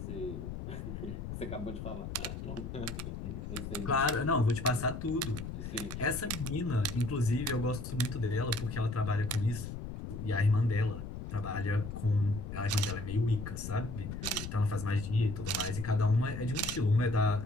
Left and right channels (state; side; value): noise; left; rumble, 7 dB below the sound